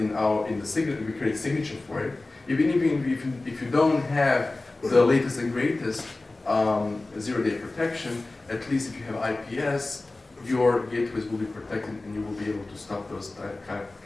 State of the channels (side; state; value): right; quieter; 3.1 dB